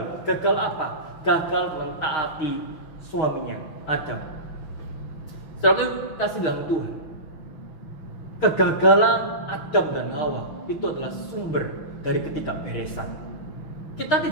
Gagal apa? Gagal mentaati suaminya, Adam. Saudara yang kasih dalam Tuhan, kegagalan Adam dan Hawa itu adalah sumber dari ketidakberesan. Kita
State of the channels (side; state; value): right; late; 6.0 ms